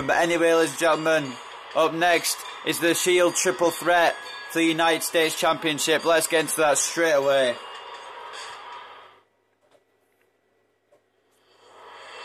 But anyway, ladies and gentlemen, up next is the Shield Triple Threat for the United States Championship. Let's get into that straight away.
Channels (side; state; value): both; identical; correlation 1.00